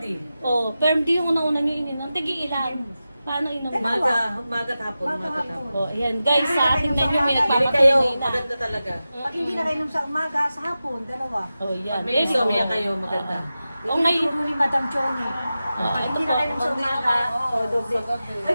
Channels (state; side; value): inverted; both; correlation -0.93